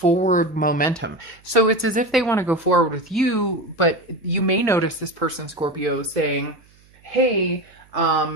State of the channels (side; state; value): right; noise; hum, 30 dB below the sound